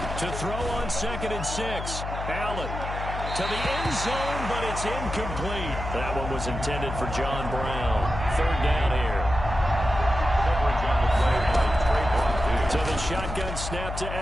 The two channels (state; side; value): noise; left; hum, 6 dB below the sound